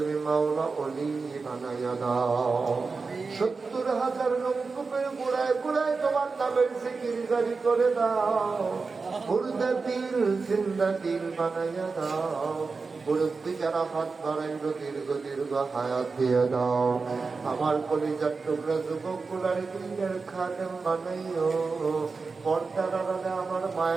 মাওলা ওলি বানাইয়া দাও। 70,000 নলকূপের গুড়ায় গুড়ায় তোমার নামের জিকির জারি করে দাও। মুর্দা দিল জিন্দা দিল বানাইয়া দাও। মুরব্বী যারা হাত বাড়াইল দীর্ঘ দীর্ঘ হায়াত দিয়ে দাও। আমার কলিজার টুকরা যুবক গুলার দিনের খাদেম বানাইও। পর্দার আড়ালে আমার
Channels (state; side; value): quieter; left; 4.4 dB